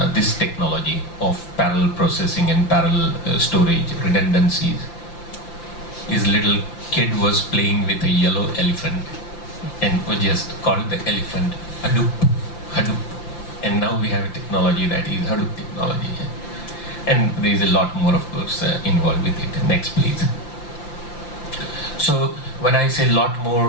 this technology of parallel processing and parallel storage, redundancies, his little kid was playing with a yellow elephant and was just called the elephant Hadoop, Hadoop. And now we have a technology that is Hadoop technology. And there is a lot more, of course, involved with it. Next, please. So when I say lot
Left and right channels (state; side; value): late; right; 5.8 ms